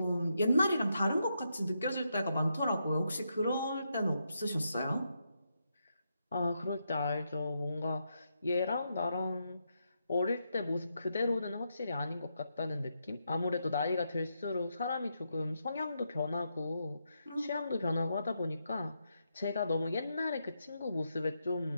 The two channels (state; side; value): inverted; both; correlation -0.82